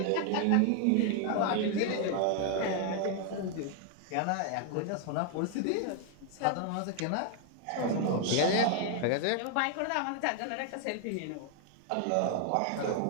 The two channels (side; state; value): both; different; correlation 0.00